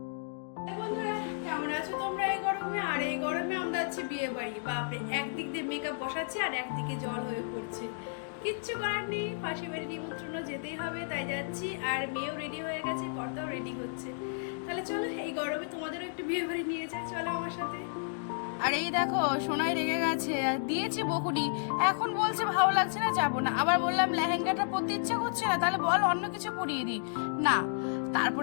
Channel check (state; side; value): silent; right; digital silence